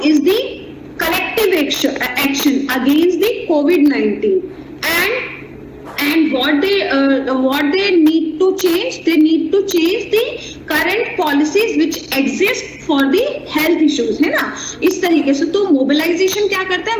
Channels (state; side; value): identical; both; correlation 1.00